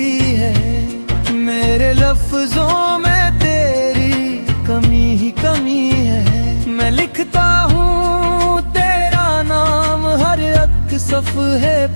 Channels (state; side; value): inverted; both; correlation -1.00